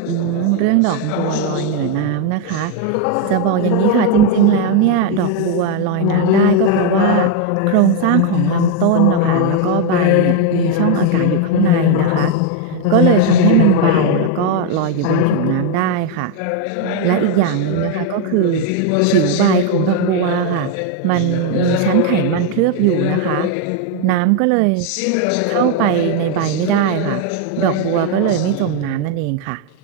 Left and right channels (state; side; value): different; both; correlation 0.01